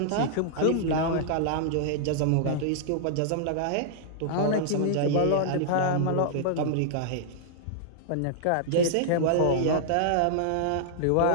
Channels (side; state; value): both; different; correlation -0.01